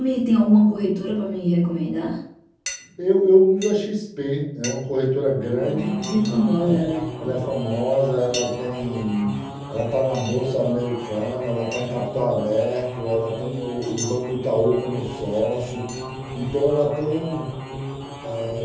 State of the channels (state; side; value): identical; both; correlation 1.00